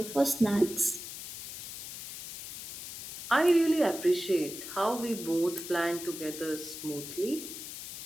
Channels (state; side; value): noise; left; hiss, 9 dB below the sound